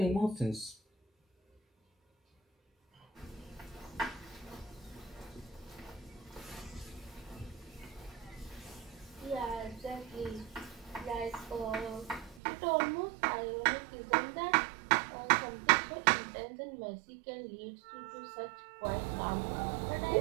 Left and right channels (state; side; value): drops out; left; at 12.4 s